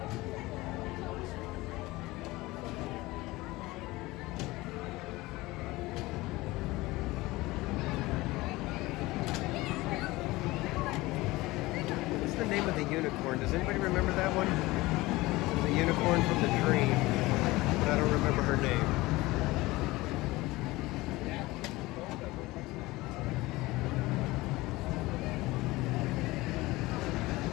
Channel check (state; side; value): quieter; right; 20.2 dB